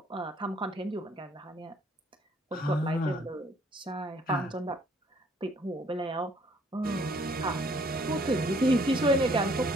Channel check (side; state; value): both; normal; correlation 0.62